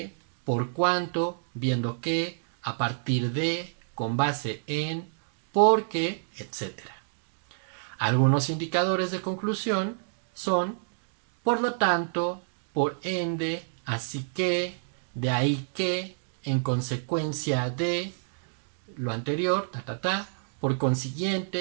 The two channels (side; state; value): left; silent; digital silence